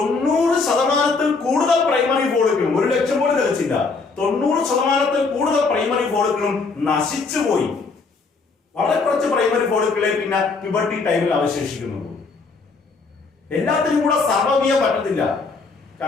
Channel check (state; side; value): quieter; right; 4.3 dB